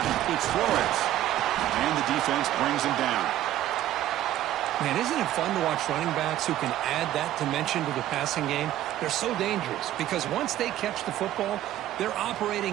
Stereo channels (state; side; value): quieter; left; 13.3 dB